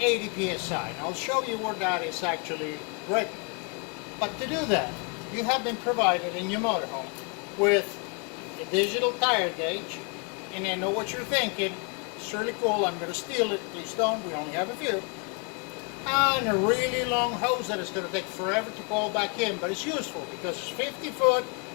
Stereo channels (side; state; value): right; quieter; 33.9 dB